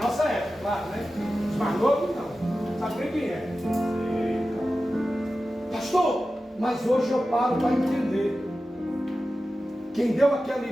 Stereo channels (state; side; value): normal; both; correlation 0.94